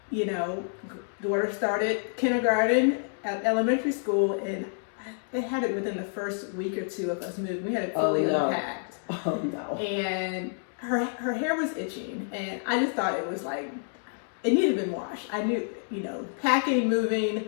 daughter started kindergarten at elementary school, and they had it within the first week or two of us moving. We had it fully unpacked. Oh no! And her hair was itching, and I just thought it was like it needed to be washed. I knew, packing, moving,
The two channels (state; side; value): silent; right; digital silence